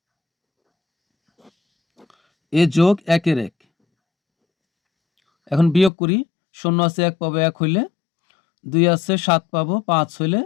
এ যোগ 1-এর 1। এখন বিয়োগ করি, 0 আছে 1 পাবো, 1 হইলে 2 আছে 7 পাবো, 5 হইলে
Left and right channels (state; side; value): drops out; right; at 5.9 s